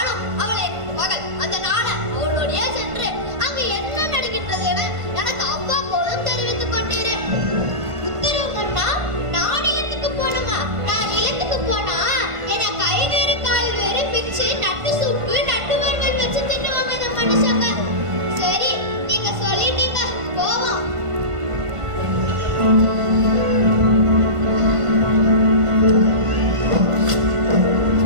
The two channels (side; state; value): left; late; 1.5 ms